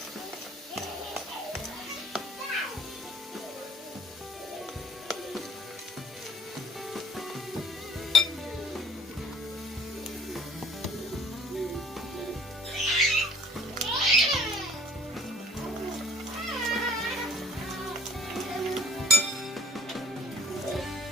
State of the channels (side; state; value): both; normal; correlation 0.55